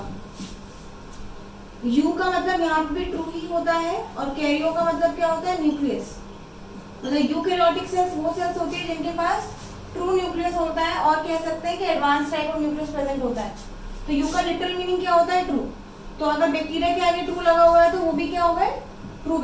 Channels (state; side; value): identical; both; correlation 1.00